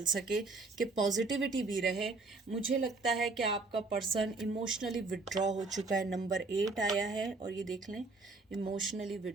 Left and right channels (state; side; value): quieter; left; 3.6 dB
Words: सके, कि पॉजिटिविटी भी रहे। मुझे लगता है कि आपका पर्सन इमोशनली विड्रॉ हो चुका है। नंबर 8 आया है और ये देख लें, इमोशनली